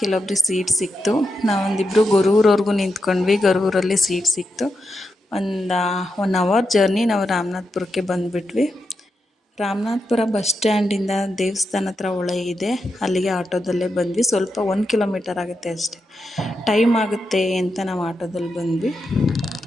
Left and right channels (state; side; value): normal; both; correlation 0.86